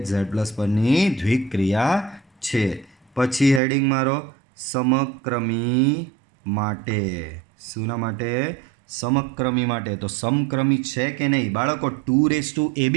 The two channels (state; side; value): drops out; left; at 3.6 s